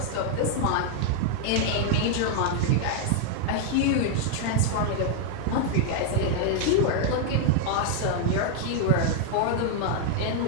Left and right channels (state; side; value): different; both; correlation 0.00